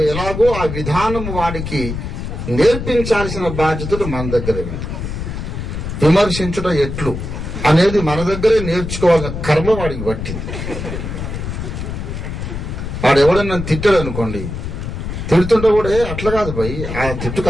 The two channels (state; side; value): noise; left; rumble, 6 dB below the sound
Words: ఎలాగో ఆ విధానం వాడికి నేర్పించాల్సిన బాధ్యతలు మన దగ్గరే ఉంది. విమర్శించడం ఎట్లు అనేది మన దగ్గరే నేర్చుకోవాల్సిన కర్మ వాడికి పట్టింది. వాడు ఎవడన్నా తిట్టాడు అనుకోండి, తిడుతుంటే కూడా అట్లా కాదు భయ్, ఆ తిట్టుకు